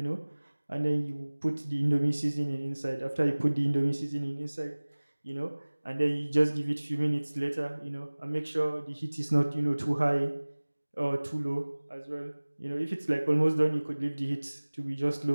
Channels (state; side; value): inverted; both; correlation -1.00